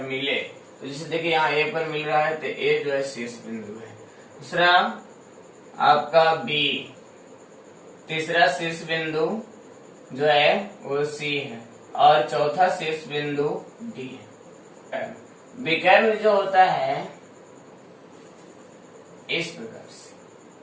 मिले, तो जैसे देखिए यहाँ ए पर मिल रहा है तो ए जो है शीर्ष बिंदु है। दूसरा आपका बी, तीसरा शीर्ष बिंदु जो है वो सी है और चौथा शीर्ष बिंदु डी है। विकर्ण जो होता है इस प्रकार से,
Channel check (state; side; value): identical; both; correlation 1.00